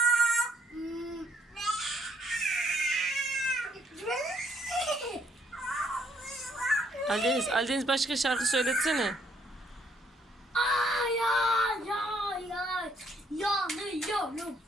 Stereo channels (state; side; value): normal; both; correlation 0.69